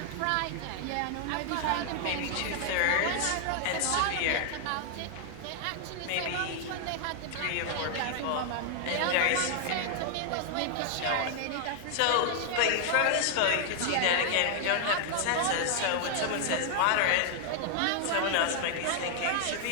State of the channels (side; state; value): both; different; correlation 0.00